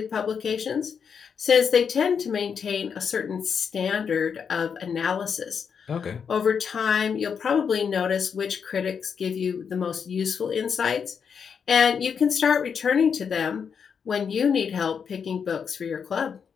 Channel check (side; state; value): right; quieter; 6.7 dB